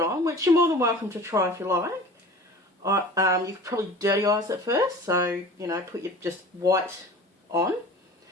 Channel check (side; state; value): both; normal; correlation 0.40